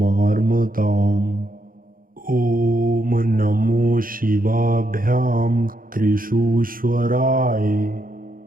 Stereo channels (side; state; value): left; late; 0.41 ms